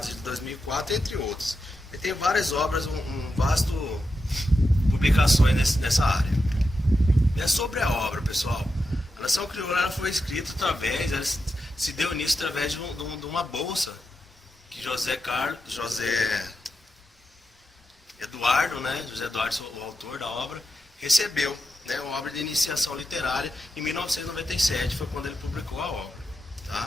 de 2004, entre outros. Ele tem várias obras, um vasto publicações nessa área. É sobre a obra, pessoal. A Nação Crioula foi escrita ela se deu início através de uma bolsa que José Eduardo, né? José Eduardo, o autor da obra, recebeu, né? Uma obra de iniciação literária em 1997, foi quando ele publicou a obra,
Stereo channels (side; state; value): both; normal; correlation 0.87